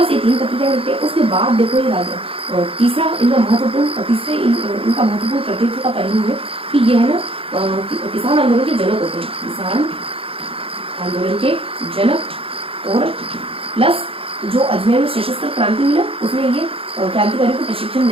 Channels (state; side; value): late; left; 0.27 ms